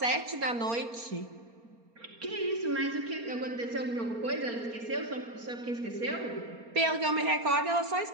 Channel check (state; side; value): late; left; 4.3 ms